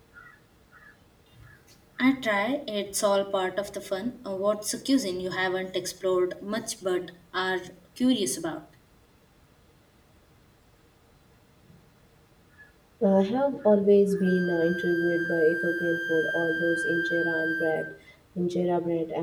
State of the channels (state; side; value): identical; both; correlation 1.00